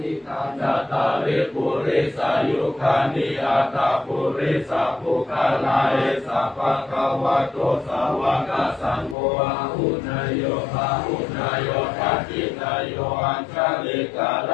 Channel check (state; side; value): drops out; right; at 9.2 s